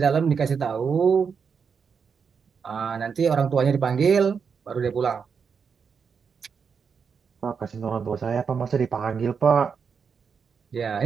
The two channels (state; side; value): quieter; left; 6.2 dB